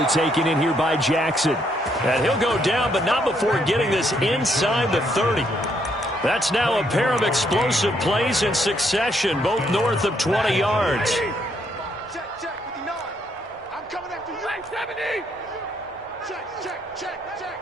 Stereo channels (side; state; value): both; normal; correlation 0.73